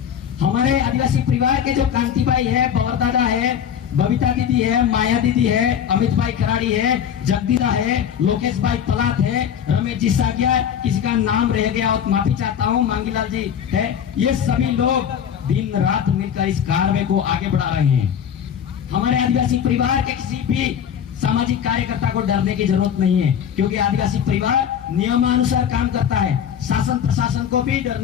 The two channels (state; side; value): quieter; right; 8.6 dB